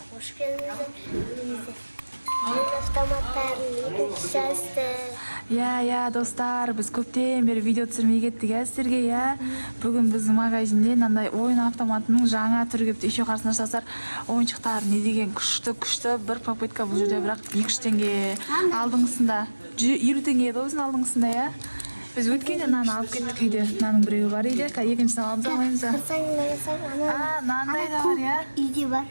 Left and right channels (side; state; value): both; inverted; correlation -1.00